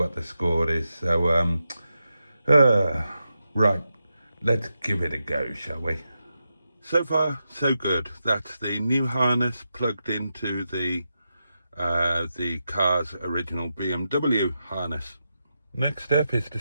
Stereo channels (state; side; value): inverted; both; correlation -0.88